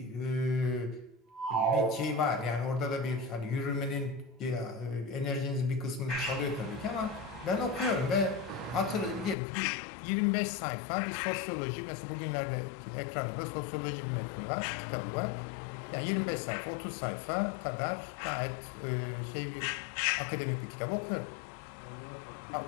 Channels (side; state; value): right; drops out; at 9.3 s